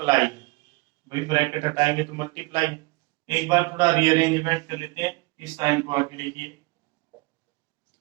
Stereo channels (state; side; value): quieter; left; 25.2 dB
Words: है भाई, ब्रैकेट हटाएंगे तो मल्टीप्लाई है। एक बार थोड़ा रीअरेंजमेंट कर लेते हैं, इस साइन को आगे लिखिए,